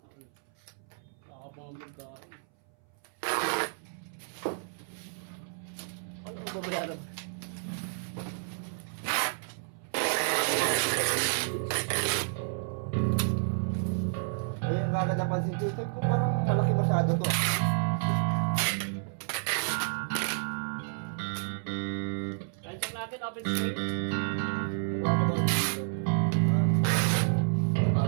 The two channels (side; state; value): left; silent; 57 dB below the other